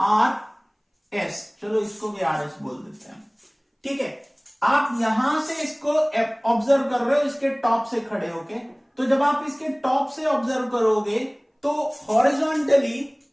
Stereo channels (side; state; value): both; identical; correlation 1.00